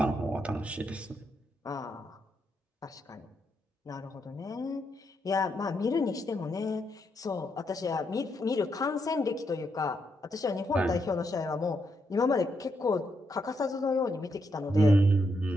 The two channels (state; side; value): normal; both; correlation 0.80